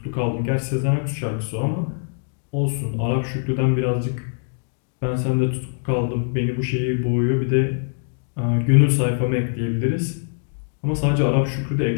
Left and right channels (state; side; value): silent; right; digital silence